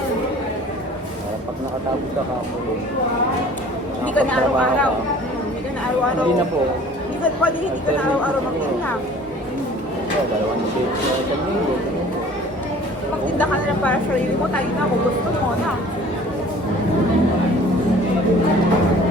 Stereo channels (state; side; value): normal; both; correlation 0.49